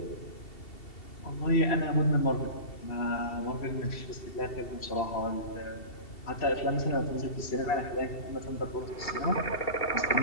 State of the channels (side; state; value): right; late; 2.7 ms